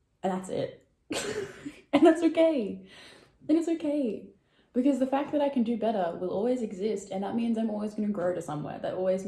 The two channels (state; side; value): identical; both; correlation 1.00